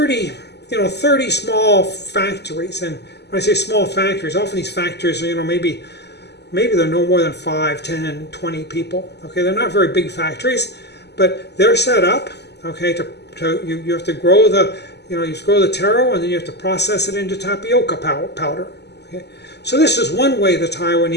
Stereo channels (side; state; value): right; late; 0.49 ms